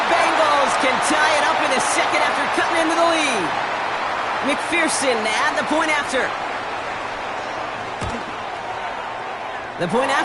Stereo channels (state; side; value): identical; both; correlation 1.00